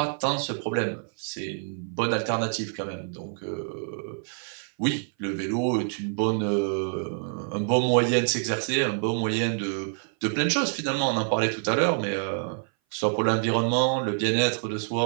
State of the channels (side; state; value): left; silent; 58 dB below the other